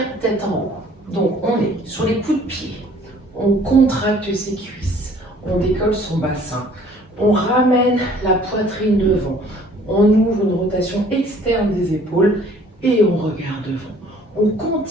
tête en haut. Donc on est sur les coups de pied. On contracte ses cuisses, on décolle son bassin, on ramène la poitrine devant, on ouvre une rotation externe des épaules et on regarde devant. On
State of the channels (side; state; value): both; normal; correlation 0.55